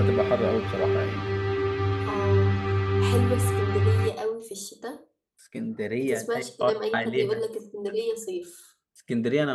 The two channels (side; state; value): both; identical; correlation 1.00